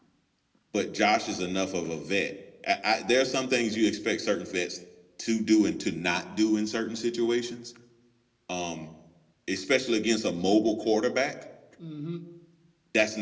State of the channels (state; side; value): identical; both; correlation 1.00